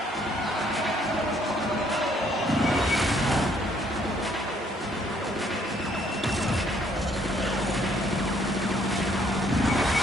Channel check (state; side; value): normal; both; correlation 0.66